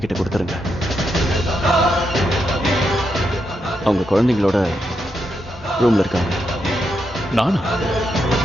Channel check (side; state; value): both; normal; correlation 0.83